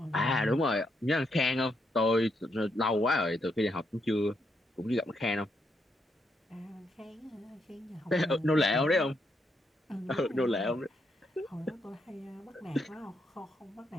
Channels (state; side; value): normal; both; correlation 0.78